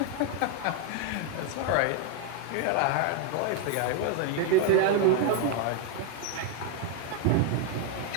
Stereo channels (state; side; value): different; both; correlation 0.01